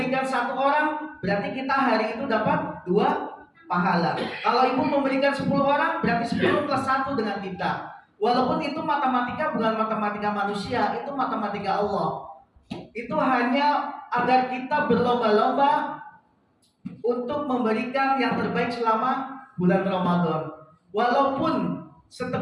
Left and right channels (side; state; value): both; identical; correlation 1.00